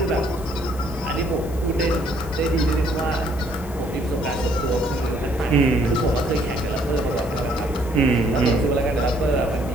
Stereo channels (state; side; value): noise; left; hiss, 20 dB below the sound